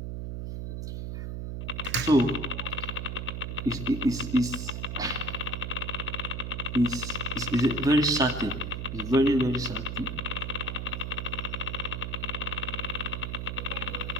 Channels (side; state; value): right; noise; hum, 5 dB below the sound